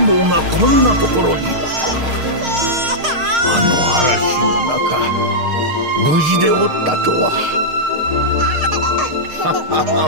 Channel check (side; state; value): left; late; 6.5 ms